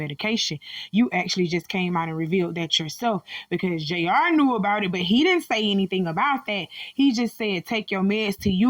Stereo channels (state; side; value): identical; both; correlation 1.00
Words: You actually just came out and revealed that yourself, because JR knew about it, but he didn't say anything about that. He just said take your meds to